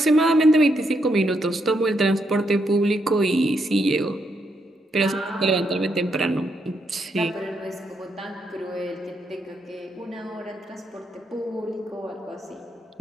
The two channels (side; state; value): both; normal; correlation 0.78